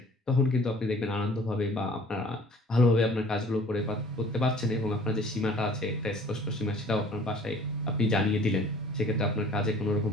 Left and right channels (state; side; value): normal; both; correlation 0.51